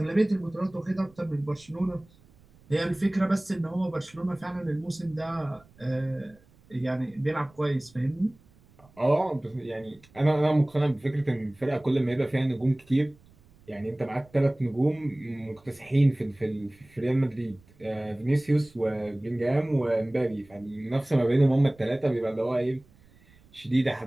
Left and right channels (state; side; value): noise; right; rumble, 28 dB below the sound